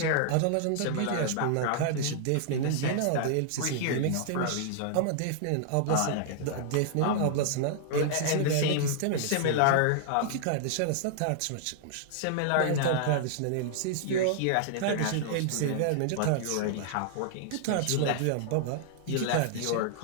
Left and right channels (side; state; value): both; different; correlation -0.01